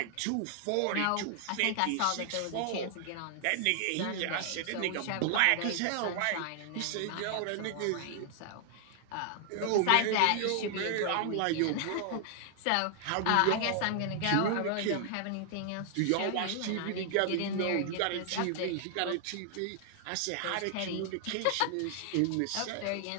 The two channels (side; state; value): both; different; correlation 0.00